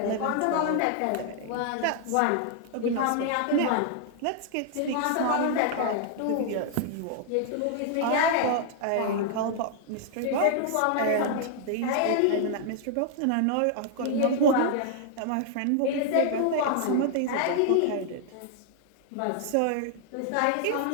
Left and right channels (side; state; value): both; different; correlation 0.00